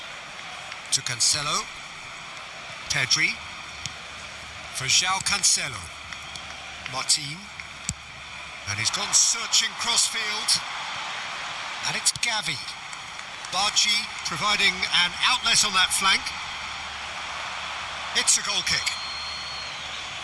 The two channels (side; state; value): both; identical; correlation 1.00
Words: To Cancelo. Pedri. For Joao Cancelo. Martin. And he's gone searching crossfield. And it's Gavi. Bargi providing an outlet on that flank. It's a goal kick.